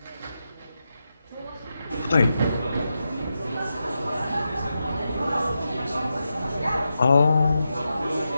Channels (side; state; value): both; inverted; correlation -0.88